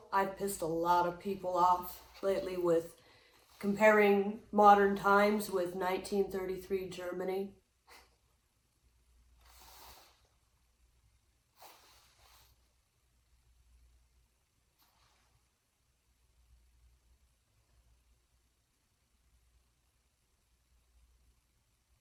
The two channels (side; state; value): both; identical; correlation 1.00